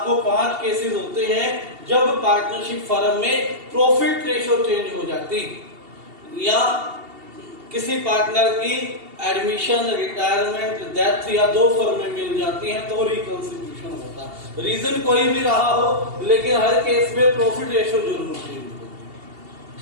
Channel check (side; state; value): left; late; 2.8 ms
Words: 5 केसेस होते हैं जब पार्टनरशिप फर्म में प्रॉफिट रेशो चेंज हो जाती, या किसी पार्टनर की एडमिशन, रिटायरमेंट, डेथ या 2 फर्में मिल जाती हैं तो रिकॉन्स्टिट्यूशन होता है। रीजन कोई भी रहा हो, लेकिन हर केस में प्रॉफिट रेशो जरूर चेंज होती।